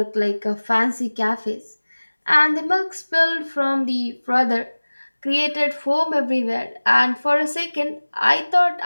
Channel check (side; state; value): both; inverted; correlation -1.00